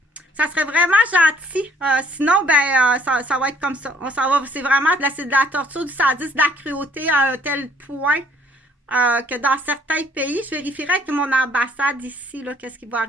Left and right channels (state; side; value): normal; both; correlation 0.61